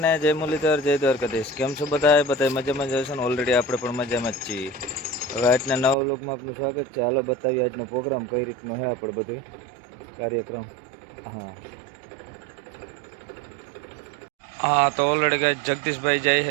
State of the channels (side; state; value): left; drops out; at 6.0 s